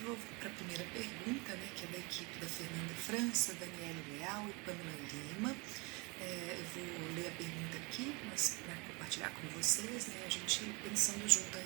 para a primeira pergunta, né, que é da equipe da Fernanda França, Daniele Leal e Pamela Lima. Eu vou ler a pergunta aqui, mas para compartilhar com vocês, né, a gente pensando junto a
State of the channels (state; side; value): quieter; left; 28.4 dB